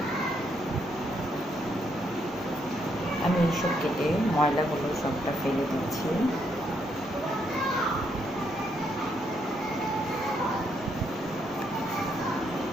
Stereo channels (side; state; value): both; normal; correlation 0.75